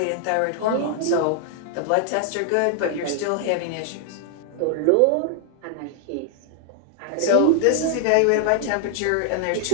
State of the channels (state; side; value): different; both; correlation 0.00